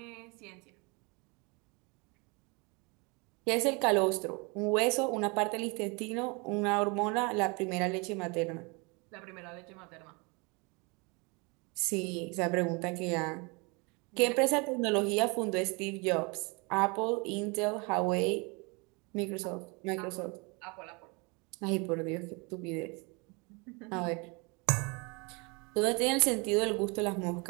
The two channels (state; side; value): quieter; left; 29.6 dB